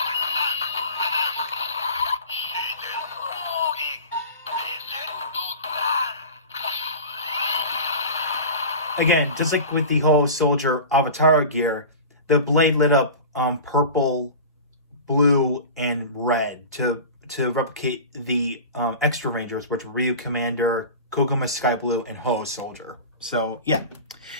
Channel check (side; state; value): both; inverted; correlation -0.34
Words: Again, just like with the Ho-Oh Soldier Avataro gear, the blade lit up purple, blue, and red to replicate the extra rangers, which were Ryu Commander, Koguma Sky Blue, and Ho-Oh Soldier. So yeah.